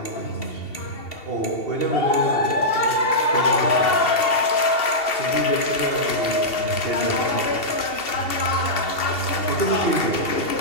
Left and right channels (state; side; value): late; right; 2.7 ms